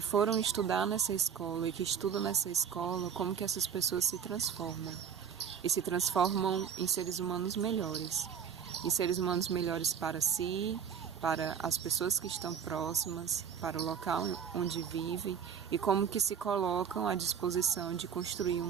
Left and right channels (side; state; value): left; quieter; 7.7 dB